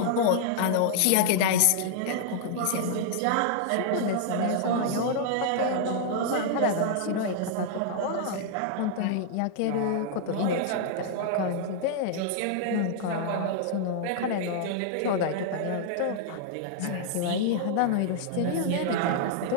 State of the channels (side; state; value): both; different; correlation -0.01